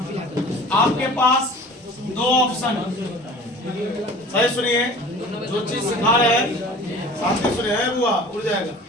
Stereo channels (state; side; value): normal; both; correlation 0.43